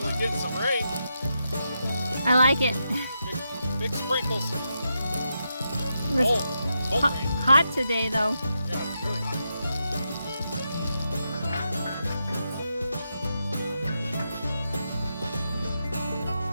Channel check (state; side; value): inverted; both; correlation -0.85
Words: getting some rain. I like it. Big sprinkles. It was Cold rain. hot today, though. Yeah, it's really hot.